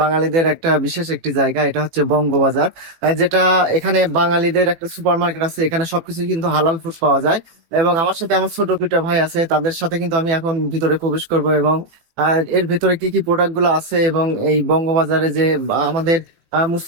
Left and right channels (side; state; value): left; late; 18 ms